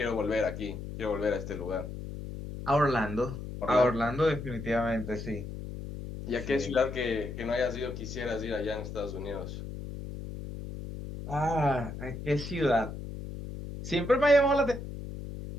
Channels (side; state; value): left; noise; hum, 9 dB below the sound